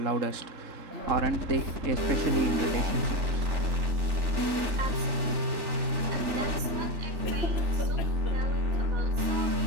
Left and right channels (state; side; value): late; left; 3.4 ms